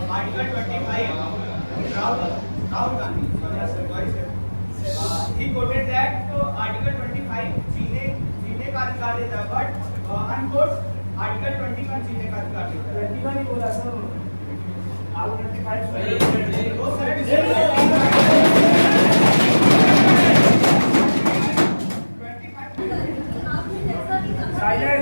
Article 25, Rahul Gandhi. He quoted that Article 25 जीने का अधिकार देता है, but unquote Article 21 जीने का अधिकार देता है। 21 ही बोला सर, आप 25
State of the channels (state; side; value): inverted; both; correlation -1.00